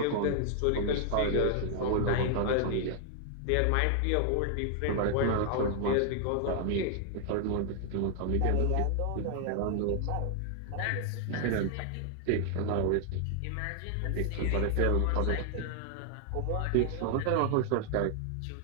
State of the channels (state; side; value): different; both; correlation 0.00